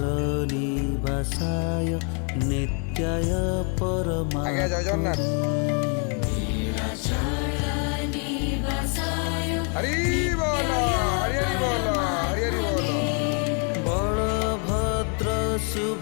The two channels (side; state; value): right; quieter; 39.6 dB